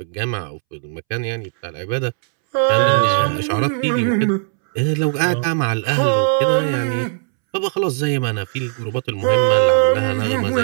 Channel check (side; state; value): left; silent; 67 dB below the other